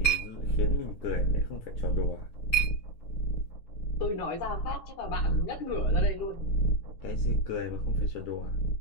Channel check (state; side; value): late; right; 9.6 ms